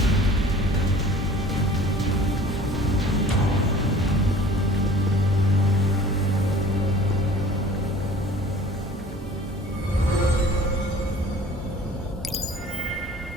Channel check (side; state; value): both; normal; correlation 0.47